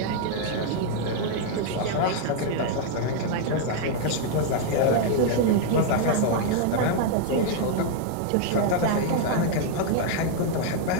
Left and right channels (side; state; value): both; different; correlation 0.00